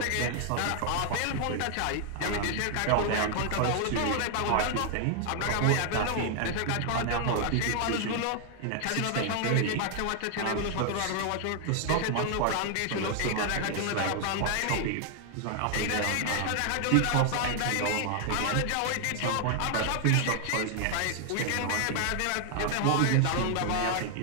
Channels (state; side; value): different; both; correlation 0.00